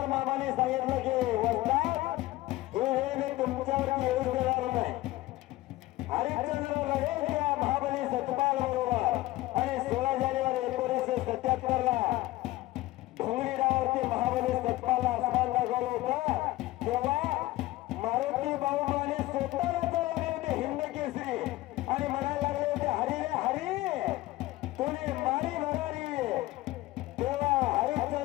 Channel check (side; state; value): right; quieter; 17.8 dB